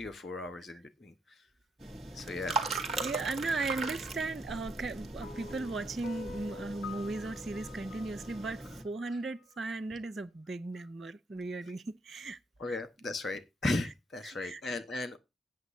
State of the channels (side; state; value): both; normal; correlation 0.74